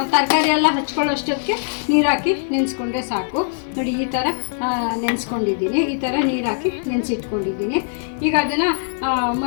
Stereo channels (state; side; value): silent; right; digital silence